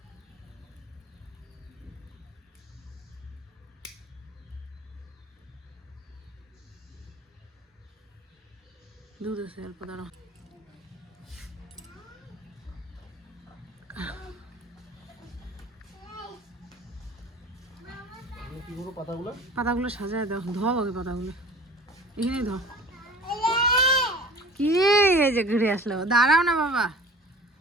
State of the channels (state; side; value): normal; both; correlation 0.42